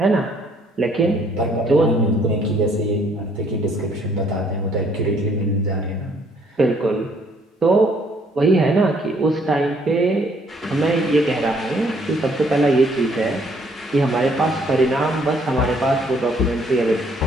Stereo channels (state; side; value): normal; both; correlation 0.65